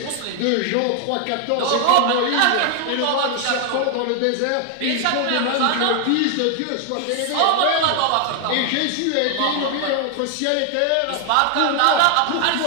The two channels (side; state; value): both; different; correlation 0.00